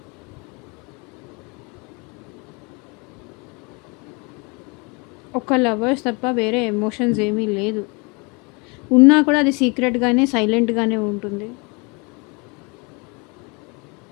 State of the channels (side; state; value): right; quieter; 30.4 dB